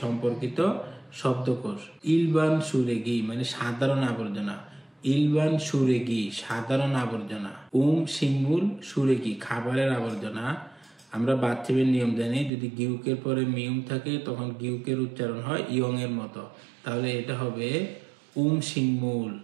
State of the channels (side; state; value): left; drops out; at 12.5 s